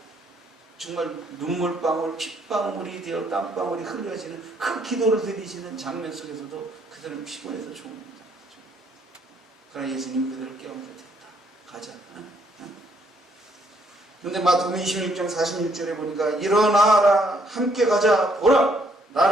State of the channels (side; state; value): both; normal; correlation 0.69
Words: 정말 눈물방울, 핏방울이 되어 땀방울이 흘려지는 그 기도를 드리시는 장면 속에서도 그들은 피곤해서 죽습니다. 그러나 예수님 그들을 깨우면서 됐다. 가자. 그런데 마태복음 26장 46절에 보니까 일어나라 함께 가자 보라